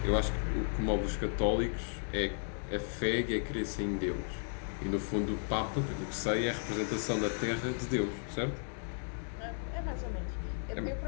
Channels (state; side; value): silent; right; digital silence